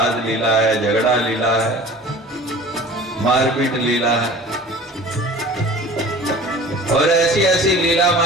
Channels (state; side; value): normal; both; correlation 0.43